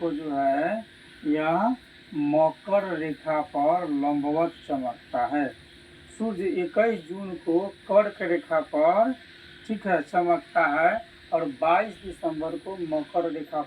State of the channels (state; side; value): identical; both; correlation 1.00